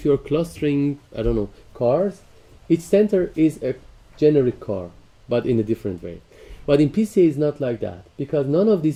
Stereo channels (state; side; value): identical; both; correlation 1.00